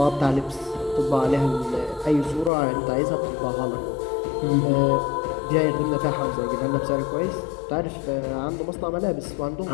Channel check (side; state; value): right; drops out; at 2.5 s